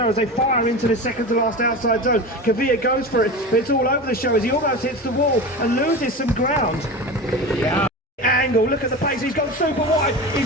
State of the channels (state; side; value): normal; both; correlation 0.28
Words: as they fire into the second to last outside zone. Kavir goes for it, but it's all over the show as he almost hits the wall and loses some ground. Yeah. Angle, look at the pace, he's gone super wide.